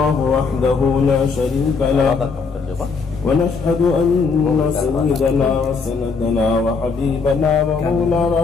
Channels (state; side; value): quieter; right; 4.9 dB